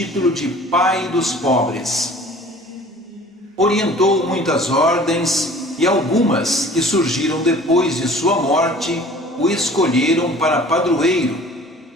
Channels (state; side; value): normal; both; correlation 0.47